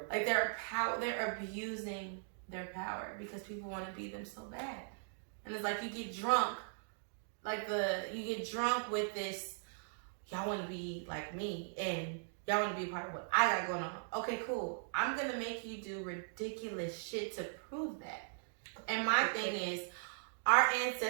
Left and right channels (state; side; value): silent; left; digital silence